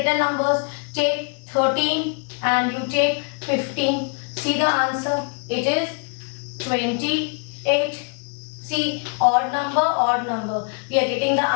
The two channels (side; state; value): right; quieter; 38.2 dB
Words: numbers. Take 13 and you take 15. See the answer. It is 28. See, odd number, odd number. We are getting the